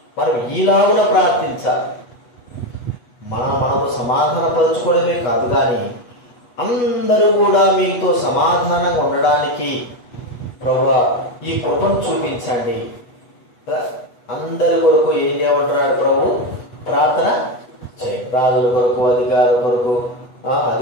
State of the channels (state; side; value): late; right; 8.2 ms